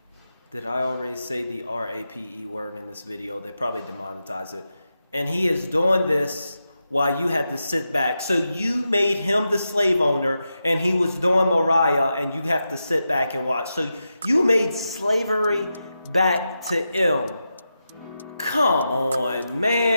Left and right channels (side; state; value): both; inverted; correlation -0.89